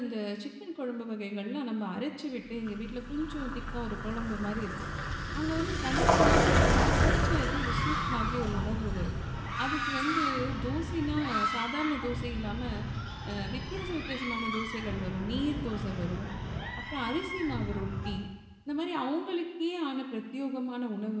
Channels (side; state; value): both; identical; correlation 1.00